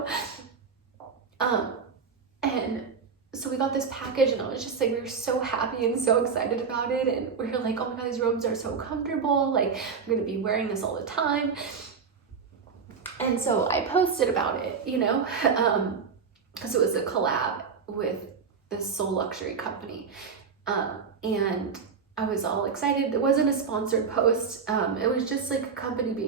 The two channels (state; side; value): quieter; left; 5.8 dB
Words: And so we got this package, and I was just like, we were so happy and so excited about it. And we were like, oh my God, these robes are so comfortable. Like, I'm gonna be wearing this all the time. And so I posted about it, you know, because it was a collab with this Soul Luxury company. And I was all excited. It wasn't a sponsored post. It was just like a company